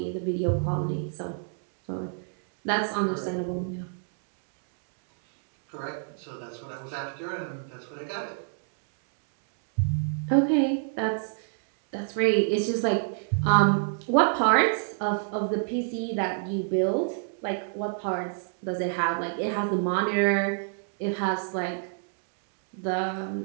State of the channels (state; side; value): silent; left; digital silence